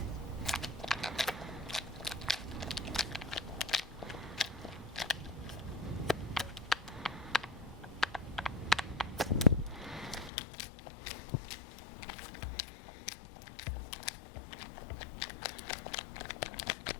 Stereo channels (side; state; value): right; drops out; at 10.3 s